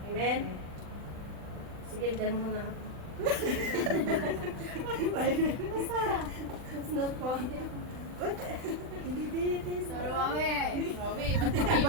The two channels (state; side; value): late; left; 39 ms